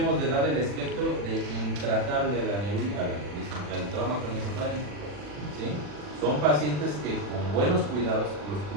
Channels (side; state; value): left; late; 40 ms